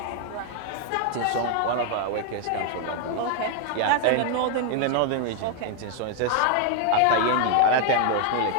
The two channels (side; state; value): both; different; correlation 0.00